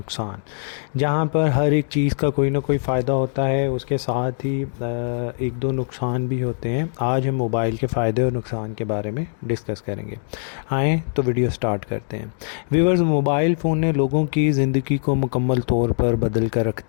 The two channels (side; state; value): right; silent; 64 dB below the other